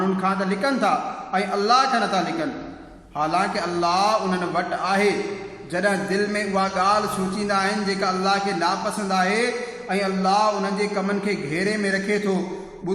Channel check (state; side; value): identical; both; correlation 1.00